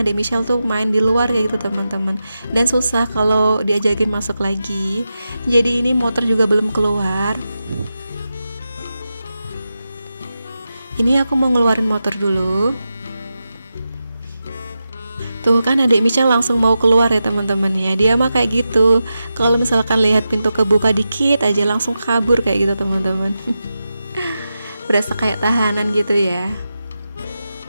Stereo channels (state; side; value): inverted; both; correlation -0.90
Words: Michelle tuh main di luar kayak gitu teman-teman, dan susah kalau diajakin masuk lagi. Jadi ini motor juga belum keluar. Ini aku mau ngeluarin motor dulu. Tuh kan adik Michelle langsung mau keluar ya teman-teman ya. Dia mah kayak gitu, kalau misalkan lihat pintu kebuka dikit aja langsung kabur kayak gitu teman-teman. Berasa kayak tahanan gitu ya.